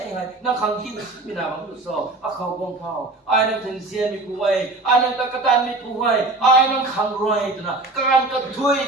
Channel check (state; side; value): quieter; left; 3.1 dB